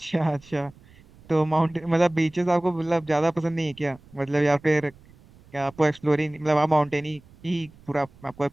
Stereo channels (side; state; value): right; noise; rumble, 26 dB below the sound